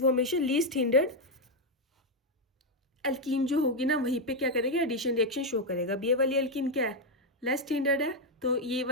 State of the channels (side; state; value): both; normal; correlation 0.02